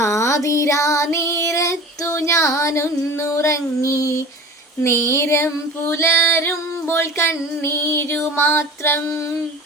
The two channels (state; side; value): normal; both; correlation 0.37